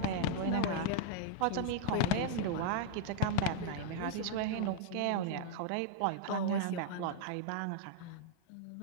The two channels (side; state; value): both; different; correlation -0.01